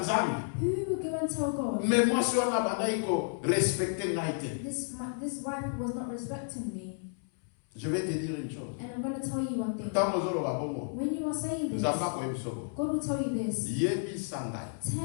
Who will go and tell God, Mais moi, si on a banaïko respecter naïté. this wife was not respecting me? Je vais te dire une chose. And I'm going to tell you one thing. Tant mozolo wa bongo. When you are saying this, Nzamba ko ebisoko. God will tell you this. Yebi sangai.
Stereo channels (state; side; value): silent; right; 57 dB below the other